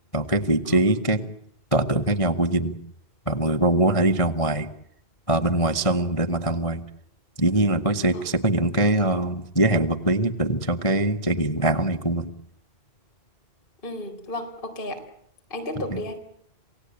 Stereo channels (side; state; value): right; late; 1.6 ms